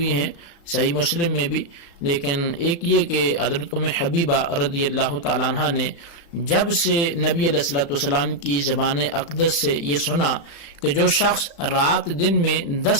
ہیں صحیح مسلم میں بھی، لیکن ایک یہ کہ حضرت ام حبیبہ رضی اللہ تعالیٰ عنہ نے جب سے نبی علیہ الصلوۃ والسلام کی زبان اقدس سے یہ سنا کہ جو شخص رات دن میں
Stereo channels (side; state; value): right; late; 35 ms